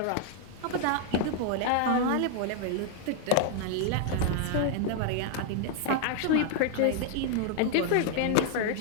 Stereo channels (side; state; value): both; different; correlation 0.00